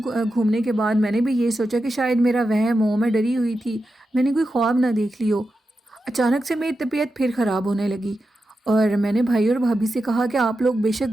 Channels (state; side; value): normal; both; correlation 0.90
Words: گھومنے کے بعد میں نے بھی یہ سوچا کہ شاید میرا وہم ہو، میں ڈری ہوئی تھی، میں نے کوئی خواب نہ دیکھ لی ہو. اچانک سے میری طبیعت پھر خراب ہونے لگی اور میں نے بھائی اور بھابھی سے کہا کہ آپ لوگ بے